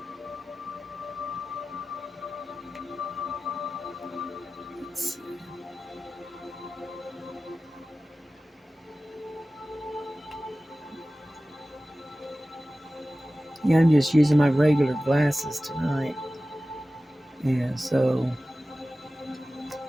yeah, I'm just using my regular glasses tonight. Yeah, so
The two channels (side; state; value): both; normal; correlation 0.96